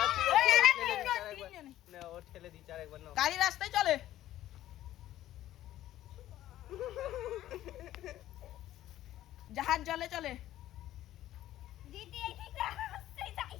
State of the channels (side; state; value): right; quieter; 13.6 dB